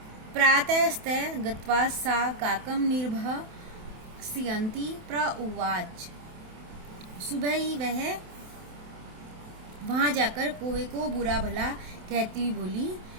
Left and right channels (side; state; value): left; late; 28 ms